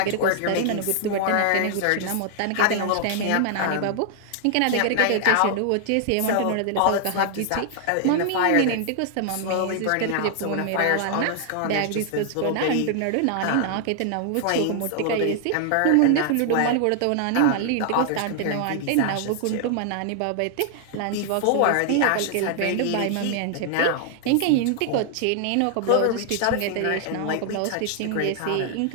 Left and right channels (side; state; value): both; different; correlation 0.00